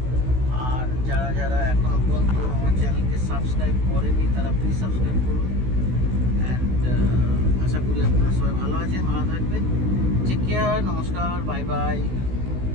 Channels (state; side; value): late; left; 16 ms